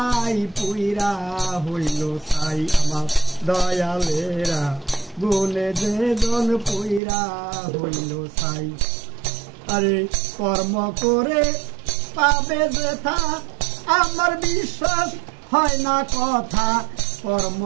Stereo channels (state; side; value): drops out; left; at 7.0 s